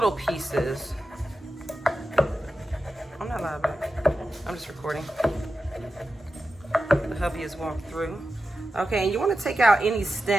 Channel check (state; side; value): normal; both; correlation 0.91